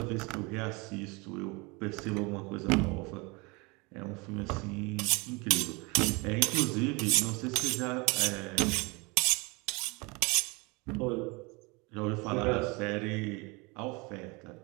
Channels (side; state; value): left; quieter; 27.2 dB